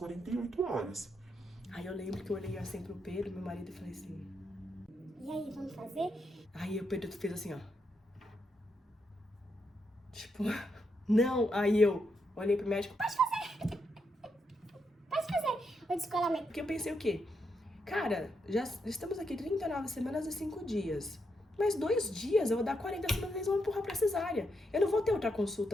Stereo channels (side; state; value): both; normal; correlation 0.81